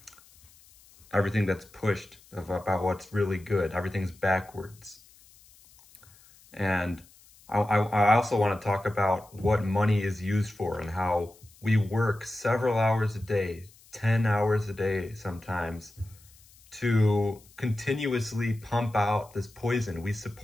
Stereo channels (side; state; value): left; noise; hiss, 26 dB below the sound